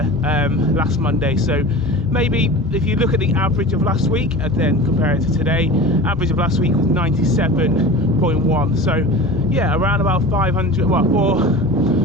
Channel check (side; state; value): both; normal; correlation 0.35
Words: last Monday, so maybe if you look at the average of last week and then compare it to today, average of last week was 97.1. so yeah, around about 500, well,